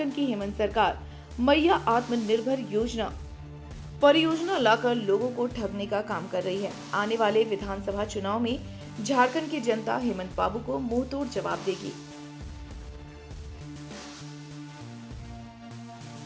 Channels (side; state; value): both; identical; correlation 1.00